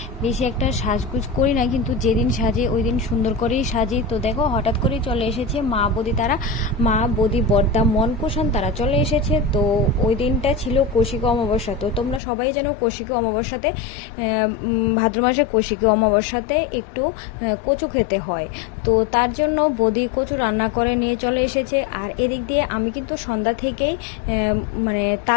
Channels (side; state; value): right; drops out; at 12.2 s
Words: বেশি একটা সাজগুজ করি না, কিন্তু যেদিন সাজি ওই দিন সুন্দর করেই সাজি। তো দেখো হঠাৎ করেই চলে এসেছে মা বৌদি, তারা মা বৌদি বর্দা মন কুষাণ তারা চলে এসেছে। তো ওই দিনটা ছিল কৌশিক অমাবস্যা। তো তোমরা সবাই জানো কৌশিক অমাবস্যাতে ভাদ্র মাসে কৌশিকী অমাবস্যাতে একটু কচু খেতে হয়। তো তার জন্য বৌদি কচু রান্না করে নিয়ে চলে এসেছে। আর এদিক দিয়ে আমি কিন্তু সন্ধ্যা থেকেই মানে